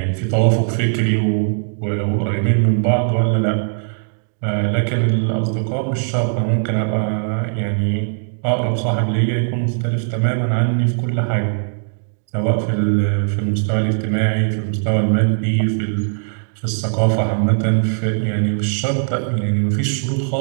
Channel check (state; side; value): silent; left; digital silence